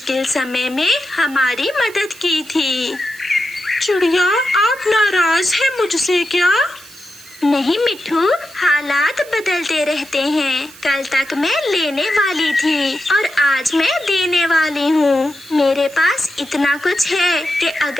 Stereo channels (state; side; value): noise; right; hiss, 20 dB below the sound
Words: समय में हमारी मदद की थी। चिड़िया, आप नाराज हैं मुझसे क्या? नहीं मिठू, हालात बदलते रहते हैं। कल तक मैं लेने वाली थी और आज मैं देने वाली हूँ। मेरे पास इतना कुछ है कि